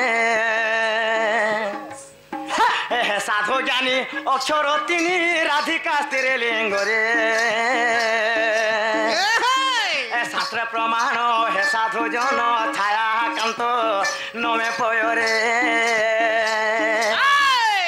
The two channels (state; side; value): identical; both; correlation 1.00